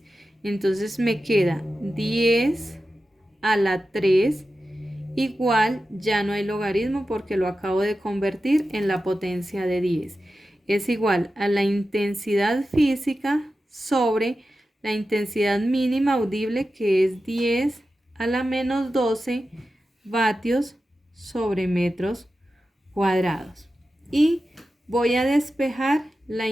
Entonces me queda 10 a la 3 igual, ya no hay logaritmo porque lo acabo de convertir en la potencia de 10. Es igual a la intensidad física sobre la intensidad mínima audible, que es 10 a la menos 12 vatios sobre metros cuadrados. Y voy a despejar la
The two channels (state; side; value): normal; both; correlation 0.92